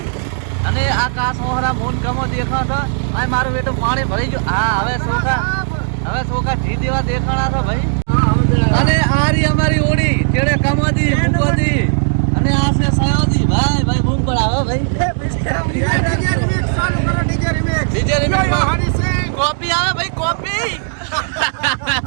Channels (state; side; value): silent; left; digital silence